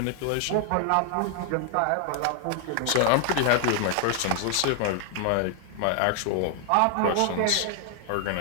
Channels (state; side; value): different; both; correlation 0.00